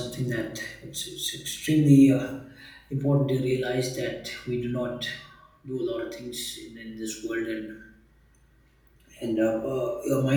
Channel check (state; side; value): identical; both; correlation 1.00